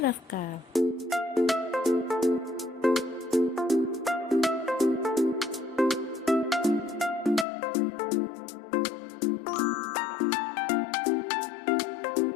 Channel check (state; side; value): drops out; right; at 7.5 s